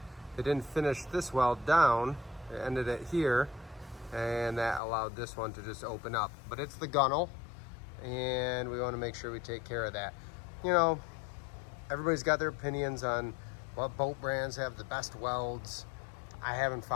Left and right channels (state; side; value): drops out; right; at 4.8 s